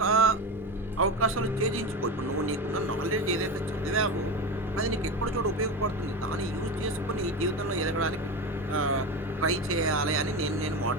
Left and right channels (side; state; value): both; normal; correlation 0.22